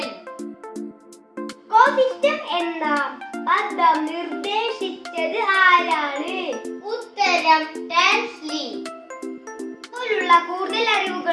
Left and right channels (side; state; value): both; identical; correlation 1.00